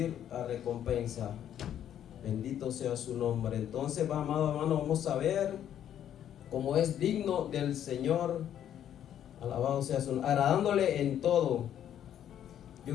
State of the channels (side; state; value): right; quieter; 10.3 dB